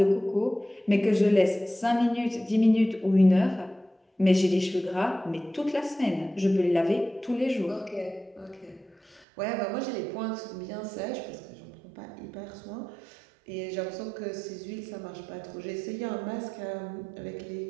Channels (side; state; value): left; drops out; at 9.2 s